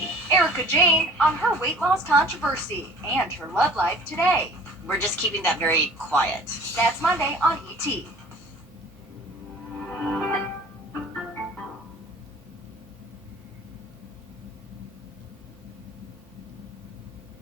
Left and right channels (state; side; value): normal; both; correlation 0.48